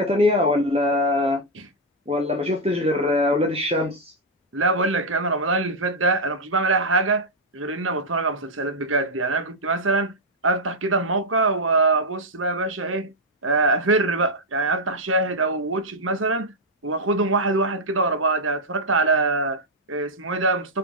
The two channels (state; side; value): normal; both; correlation -0.03